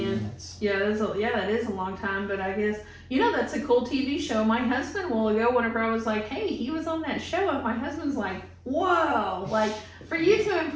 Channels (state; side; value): identical; both; correlation 1.00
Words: Yeah, that is a long time, but I guess, that's a cool TV show. My husband will go whenever I was like, hey, he was on that show, and my husband's like, whoa, like, for you to